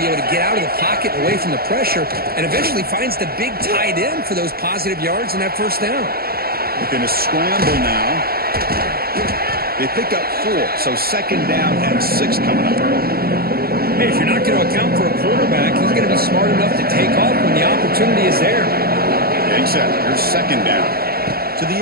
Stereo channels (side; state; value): left; late; 0.44 ms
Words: able to get out of the pocket away from the pressure and eventually finds the big tight end for those positive yards in that first down. Looking to scramble now. They pick up 4, so 2nd down and 6 coming up. Hey, if you're not going to account for a quarterback, he's going to be smart enough to take off when the opportunity is there. Getting set. Here's 2nd down. To